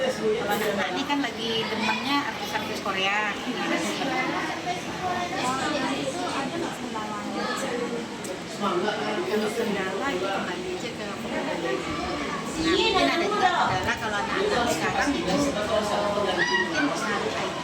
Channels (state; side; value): identical; both; correlation 1.00